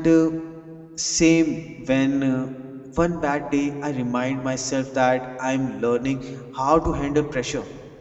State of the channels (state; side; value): identical; both; correlation 1.00